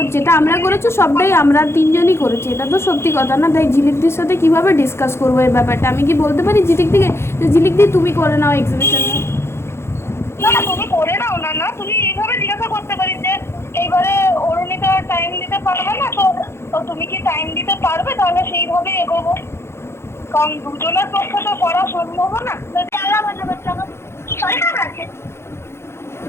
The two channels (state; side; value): late; right; 0.12 ms